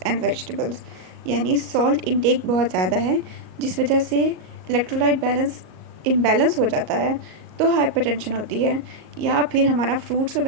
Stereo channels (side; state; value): left; late; 38 ms